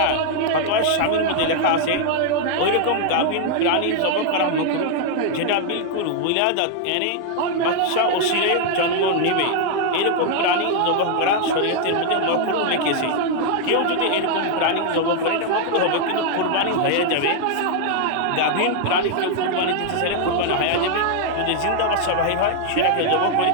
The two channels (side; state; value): both; different; correlation 0.00